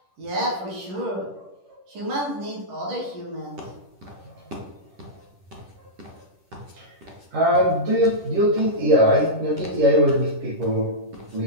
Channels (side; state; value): left; late; 10 ms